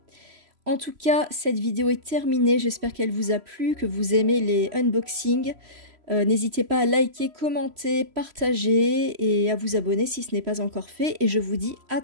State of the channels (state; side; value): late; left; 3.0 ms